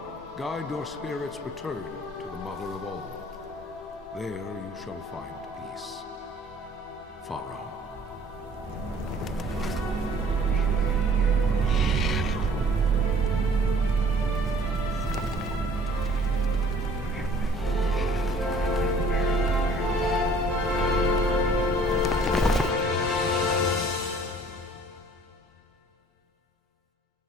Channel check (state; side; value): normal; both; correlation 0.53